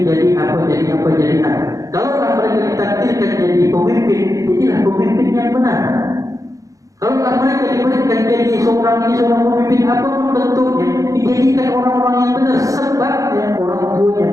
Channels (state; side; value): late; left; 0.16 ms